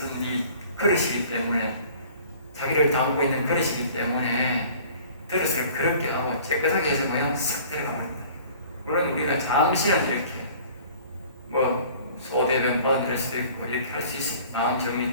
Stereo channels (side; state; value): both; inverted; correlation -0.49